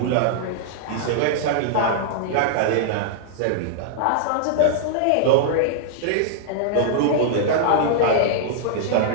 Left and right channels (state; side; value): different; both; correlation -0.01